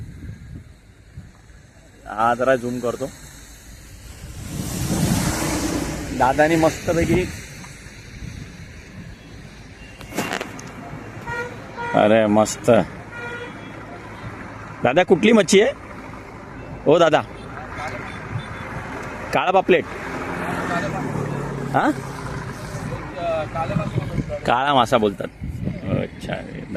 हा जरा झूम करतो. दादानी मस्तपैकी, अरे मस्त. दादा कुठली मच्छी आहे हो दादा? काळा पापलेट, हां काळा मासा बोलतात. अच्छा,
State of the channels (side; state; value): both; identical; correlation 1.00